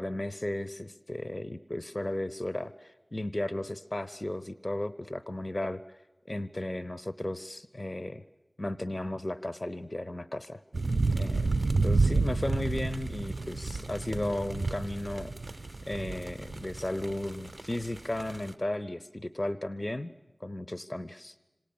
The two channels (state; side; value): normal; both; correlation 0.96